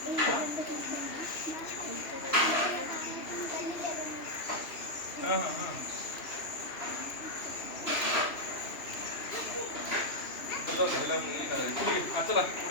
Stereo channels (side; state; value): right; late; 2.9 ms